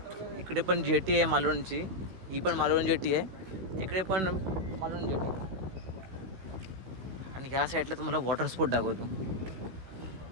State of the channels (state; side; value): late; left; 16 ms